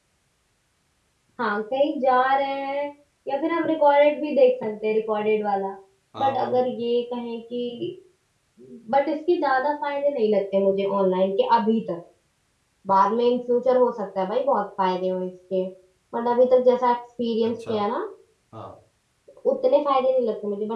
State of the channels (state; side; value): identical; both; correlation 1.00